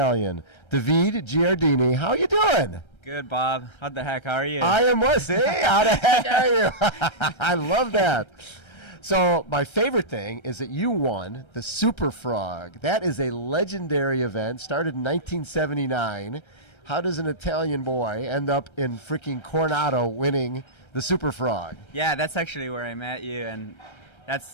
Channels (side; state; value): right; late; 1.3 ms